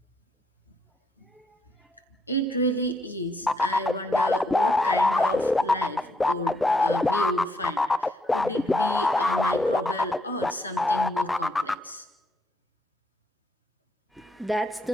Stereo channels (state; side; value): normal; both; correlation 0.74